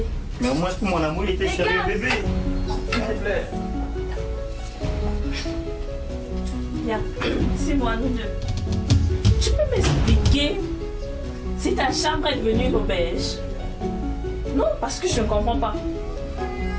Mais au moins pour mon amour, il était sérieux, bébé. S'il te plaît. Viens, c'est moi, nous deux. Tu peux m'expliquer si ta chambre est devenue une auberge? Non, parce que je ne comprends pas.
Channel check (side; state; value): both; identical; correlation 1.00